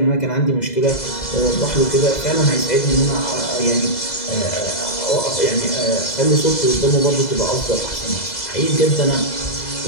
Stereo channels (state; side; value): late; right; 2.0 ms